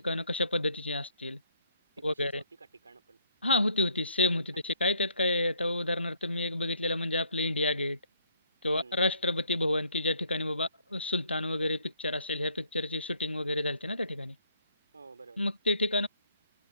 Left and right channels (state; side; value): inverted; both; correlation -0.65